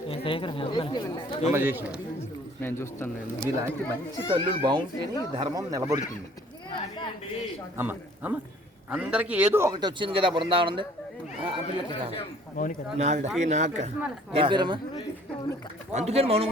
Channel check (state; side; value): normal; both; correlation 0.55